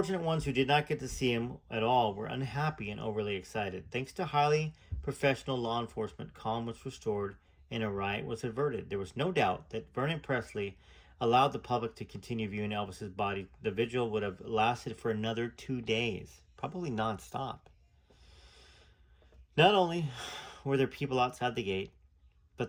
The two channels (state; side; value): identical; both; correlation 1.00